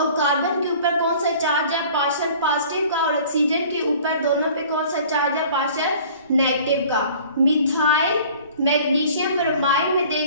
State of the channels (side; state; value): both; inverted; correlation -0.49